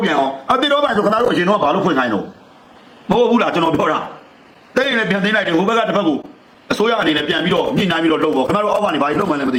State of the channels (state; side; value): identical; both; correlation 1.00